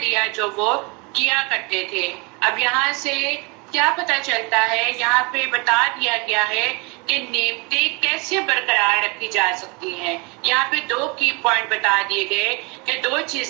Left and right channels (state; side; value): quieter; left; 29.3 dB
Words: جو وہ کیا کرتے تھے. اب یہاں سے کیا پتہ چلتا ہے؟ یہاں پہ بتا دیا گیا ہے کہ نعمتیں کیسے برقرار رکھی جا سکتی ہیں۔ یہاں پہ 2 کی پوائنٹ بتا دیے گئے کہ 2